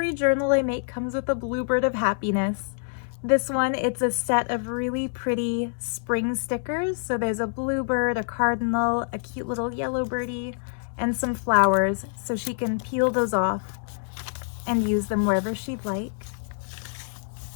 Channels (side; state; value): right; silent; digital silence